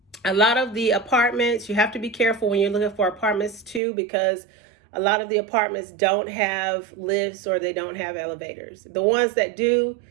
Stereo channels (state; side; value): drops out; left; at 3.8 s